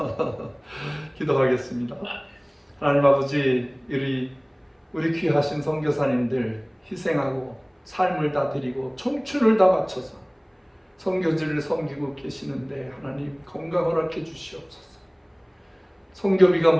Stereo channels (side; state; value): both; identical; correlation 1.00